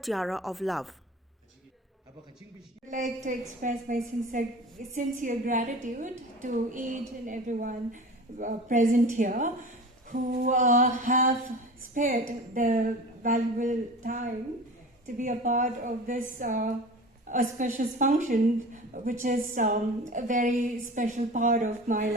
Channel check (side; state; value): both; normal; correlation 0.36